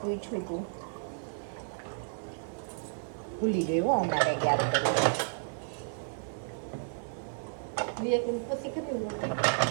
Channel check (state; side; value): silent; left; 56 dB below the other